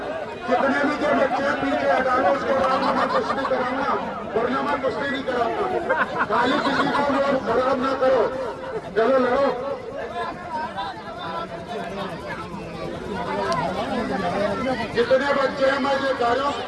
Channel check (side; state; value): both; identical; correlation 1.00